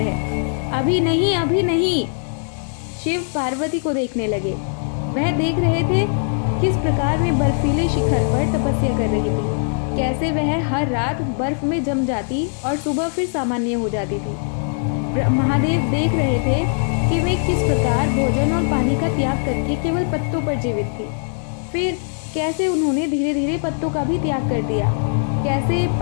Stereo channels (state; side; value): silent; right; digital silence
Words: है। अभी नहीं, अभी नहीं। शिव पार्वती को देखने लगे। वह देख रहे थे किस प्रकार वे बर्फीले शिखर पर तपस्या कर रही थी, कैसे वह हर रात बर्फ में जम जाती और सुबह फिर सामान्य हो जाती थी। महादेव देख रहे थे कि वे किस प्रकार भोजन और पानी का त्याग करके केवल पत्तों पर जीवित थी। फिर कैसे उन्होंने धीरे धीरे पत्तों का भी त्याग कर दिया। कैसे